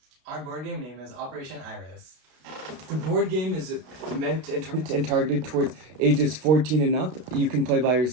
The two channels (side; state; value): left; late; 32 ms